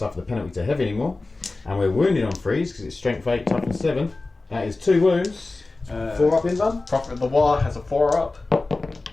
the penalty to heavy anymore, and we're wounded on 3s because it's strength 8, toughness 7. That is 2 wounds. 4 up in done. Prophet of the War has a 4 up.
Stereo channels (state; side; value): quieter; right; 3.4 dB